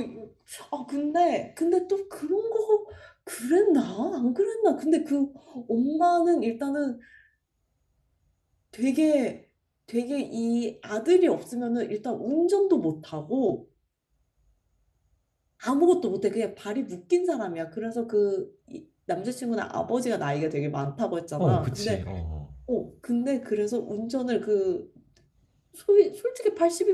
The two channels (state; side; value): identical; both; correlation 1.00